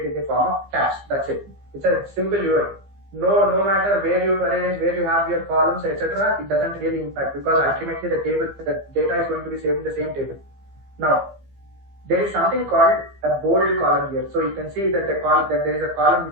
in the form of tabs. That's it. It's a simple UI. No matter where you arrange, where you have your columns, etc., it doesn't really impact, because ultimately the data is going to be saved in the same table. Now, there is something called a bold column here. So you can see that there is a column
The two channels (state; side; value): late; left; 15 ms